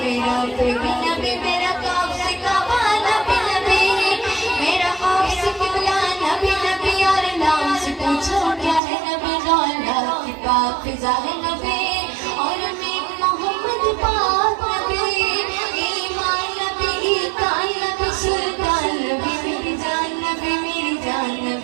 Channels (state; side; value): drops out; left; at 8.8 s